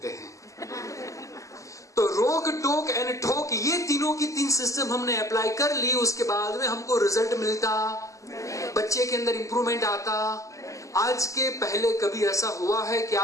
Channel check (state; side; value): late; right; 0.16 ms